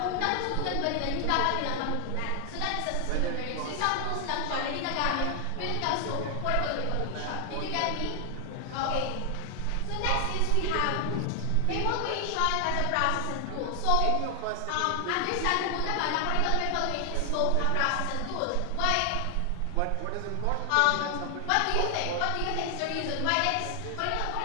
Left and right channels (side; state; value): both; different; correlation 0.00